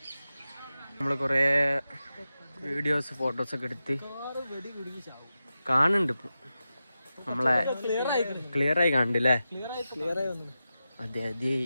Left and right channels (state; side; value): inverted; both; correlation -0.92